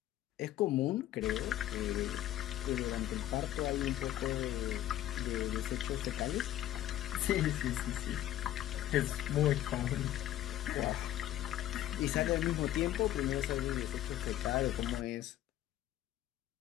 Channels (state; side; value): quieter; right; 13.3 dB